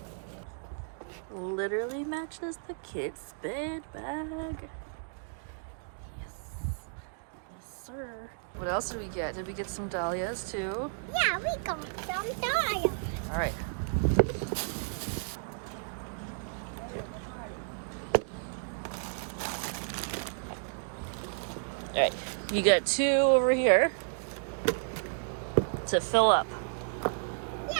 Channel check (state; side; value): silent; left; digital silence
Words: Literally matches the kid's bed bag. Yes. Yes, sir. What else did we get? Did we get some dahlias too? Yeah, we got some dahlias. All right. All right. You got two over here to fill up.